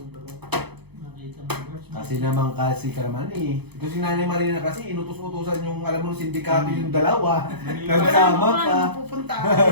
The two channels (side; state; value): left; late; 0.98 ms